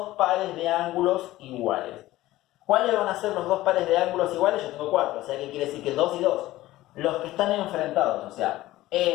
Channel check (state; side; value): quieter; right; 16.5 dB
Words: pares de ángulos iguales. ¿Cuáles van a ser los 2 pares de ángulos iguales? Yo tengo 4, o sea que quiere decir que 2 y 2. Los que están enfrentados, o sea,